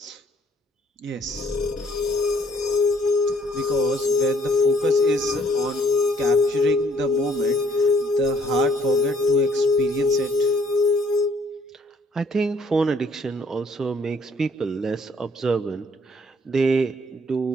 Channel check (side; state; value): both; normal; correlation 0.64